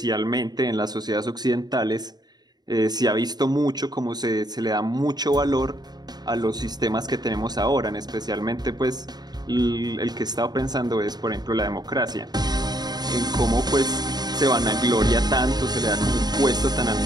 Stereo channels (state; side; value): late; left; 0.20 ms